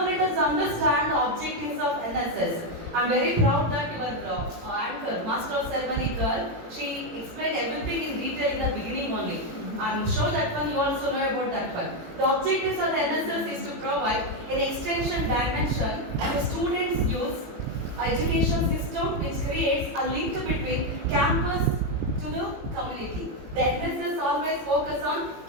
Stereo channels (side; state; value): left; late; 18 ms